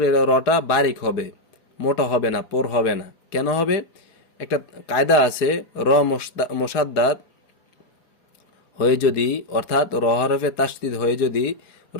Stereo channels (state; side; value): late; right; 4.8 ms